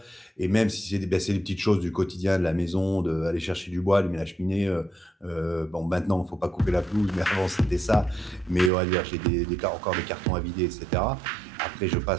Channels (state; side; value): drops out; left; at 8.7 s